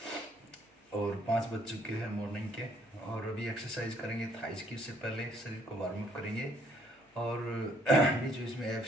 और 5 बज चुके हैं मॉर्निंग के। और अभी एक्सरसाइज करेंगे थाइस की। उससे पहले शरीर को वार्म अप करेंगे और बीच बीच में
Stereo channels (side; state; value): both; normal; correlation 0.65